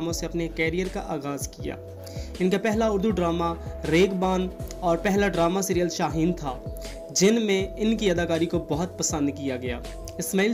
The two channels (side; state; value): both; identical; correlation 1.00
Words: से अपने कैरियर का आगाज़ किया। इनका पहला उर्दू ड्रामा रेगबान और पहला ड्रामा सीरियल शाहीन था, जिनमें इनकी अदाकारी को बहुत पसंद किया गया। इस्माइल